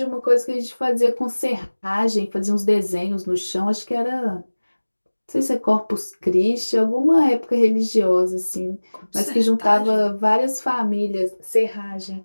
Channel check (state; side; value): inverted; both; correlation -1.00